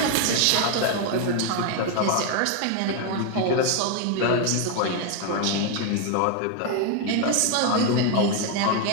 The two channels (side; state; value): both; different; correlation 0.01